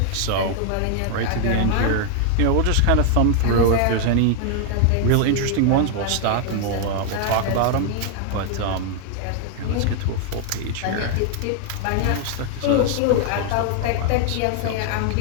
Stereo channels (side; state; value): both; different; correlation 0.00